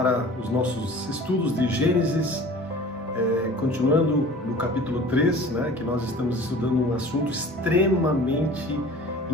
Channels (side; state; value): both; normal; correlation 0.43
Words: os nossos estudos de Gênesis, continuando no capítulo 3, né, que nós estamos estudando um assunto extremamente